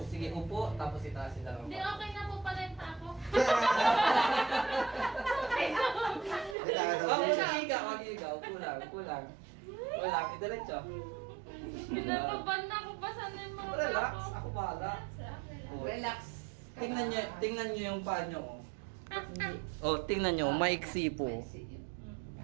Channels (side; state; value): left; drops out; at 6.6 s